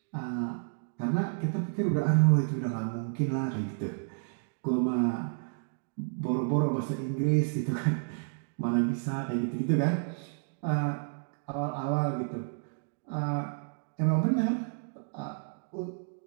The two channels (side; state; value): left; silent; digital silence